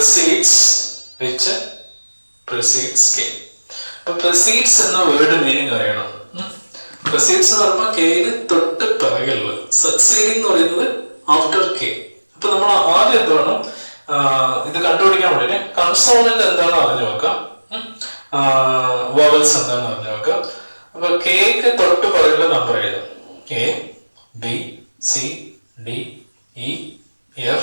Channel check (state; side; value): inverted; both; correlation -1.00